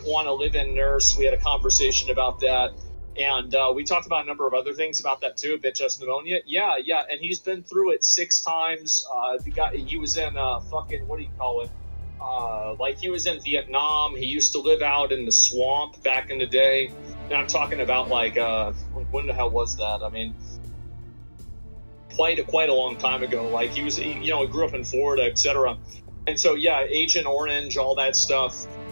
want to live in nurse. We had a conversation about that. And we talked about a number of other things about that too, bitch ass pneumonia. Yeah, and he's been through it 6 times. He was in fucking, what do you call it? Like he was in Vietnam. He used to live out in the swamp back in the day. And I'm talking about like when the hell was that? I mean, quite a long time ago. Like he grew up in Florida, etc. And so yeah, Agent Orange, all that stuff.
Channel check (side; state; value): both; inverted; correlation -1.00